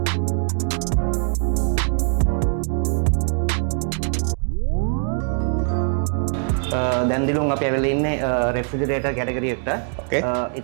දැන් දිලුම් අපි ඇවිල්ලා ඉන්නේ රෙෆ්‍රිජරේටර් කැටගරි එකට.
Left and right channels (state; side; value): silent; left; 58 dB below the other